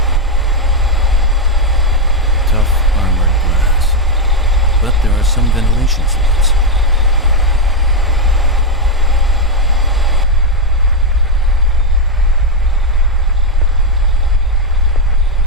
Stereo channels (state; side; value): normal; both; correlation 0.04